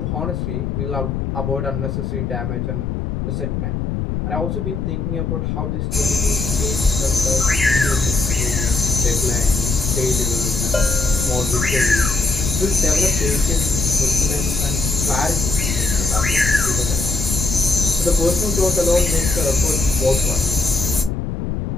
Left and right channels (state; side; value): noise; left; rumble, 2 dB below the sound